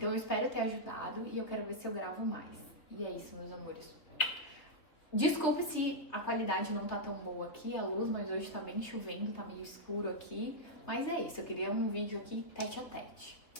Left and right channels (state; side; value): late; right; 3.5 ms